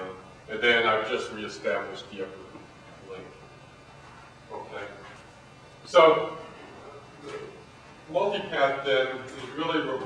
And then I've just reestablished the upper link. Okay. So, multipath then is really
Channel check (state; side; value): identical; both; correlation 1.00